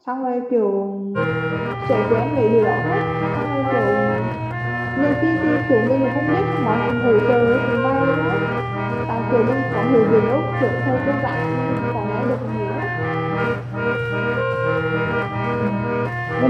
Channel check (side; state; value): both; identical; correlation 1.00